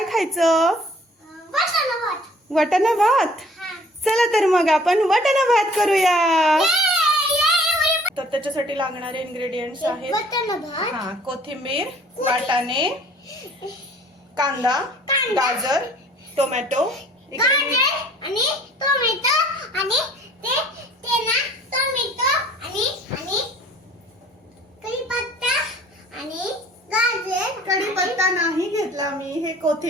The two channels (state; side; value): normal; both; correlation 0.54